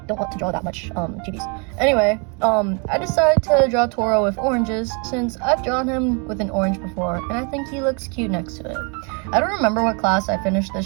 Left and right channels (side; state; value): left; quieter; 35.1 dB